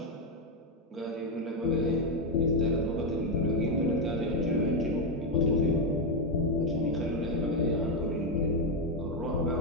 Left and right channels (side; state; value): both; normal; correlation 0.05